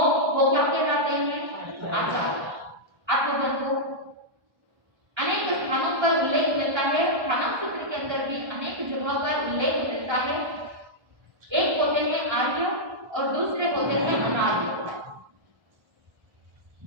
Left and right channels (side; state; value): left; late; 1.3 ms